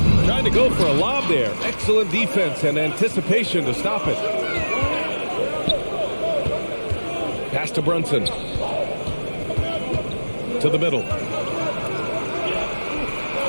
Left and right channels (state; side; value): inverted; both; correlation -1.00